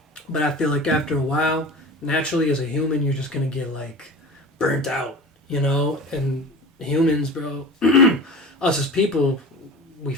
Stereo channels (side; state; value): both; normal; correlation 0.35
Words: But I feel like after a while, naturally as a human, you're just going to get, like, burnt out, you know? And humans, bro, us as people, we